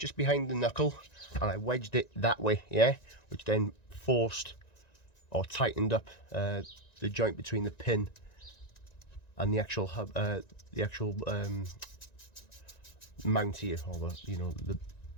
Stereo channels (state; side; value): late; right; 1.9 ms